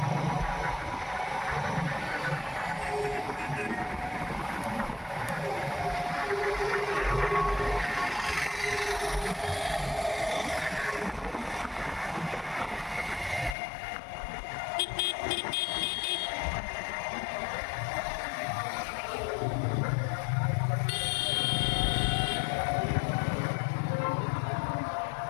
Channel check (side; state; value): right; drops out; at 13.6 s